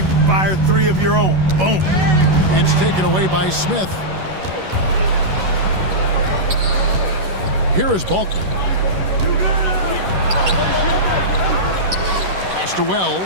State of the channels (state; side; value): late; left; 11 ms